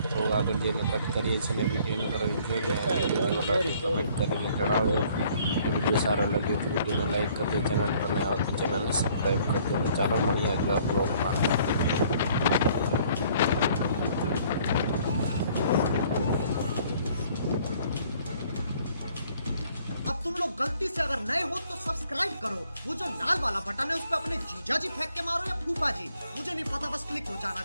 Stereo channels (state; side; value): inverted; both; correlation -0.60